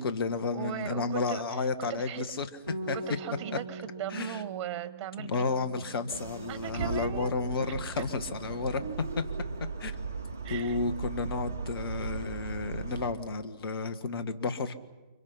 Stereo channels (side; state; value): both; inverted; correlation -0.48